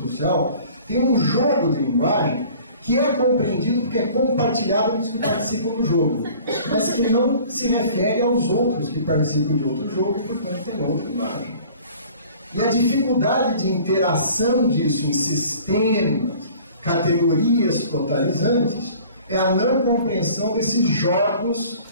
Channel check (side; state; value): both; inverted; correlation -0.49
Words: social tem um jogo de linguagem que é compreendido porque é compartilhado pelos que participam do jogo, mas que não se refere aos outros que participam de outro jogo e, portanto, tem outra linguagem. E a dificuldade de interação disso em sistemas, categorias totalizantes, é a não compreensão desses jogos,